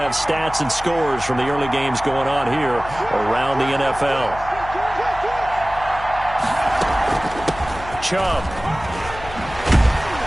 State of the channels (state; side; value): noise; left; hum, 14 dB below the sound